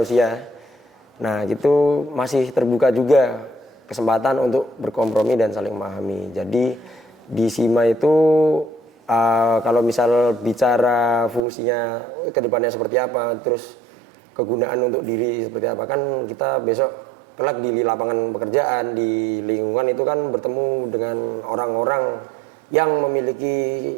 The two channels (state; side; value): drops out; left; at 11.5 s